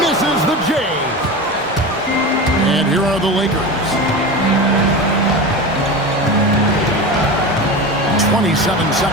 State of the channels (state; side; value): normal; both; correlation 0.26